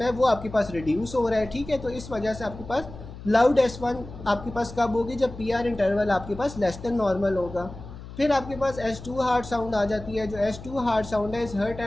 है वो आपके पास रिड्यूस हो रहा है, ठीक है। तो इस वजह से आपके पास लाउड S1 आपके पास कब होगी, जब PR इंटरवल आपके पास लेस देन नॉर्मल होगा। फिर आपके पास S2 हार्ट साउंड आ जाती है। जो S2 हार्ट साउंड है, is heard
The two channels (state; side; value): noise; left; hum, 14 dB below the sound